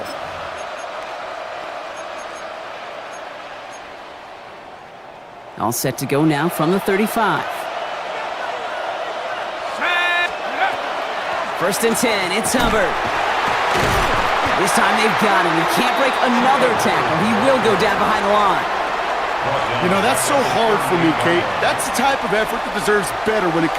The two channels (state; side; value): identical; both; correlation 1.00